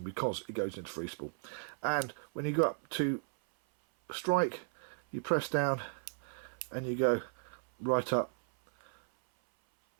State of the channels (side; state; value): left; silent; 54 dB below the other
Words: because it goes into free spool. And when you go up to strike, you press down and you go right up